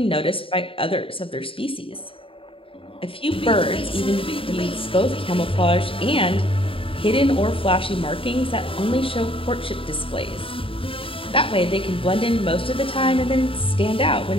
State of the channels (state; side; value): late; right; 0.26 ms